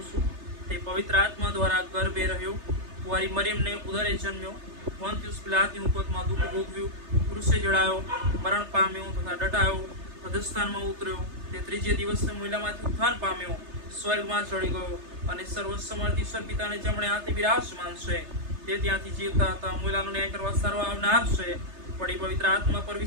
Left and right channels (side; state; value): left; late; 3.3 ms